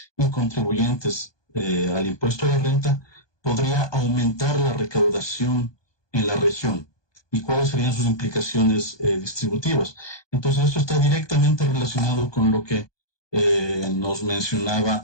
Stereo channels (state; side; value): late; right; 1.2 ms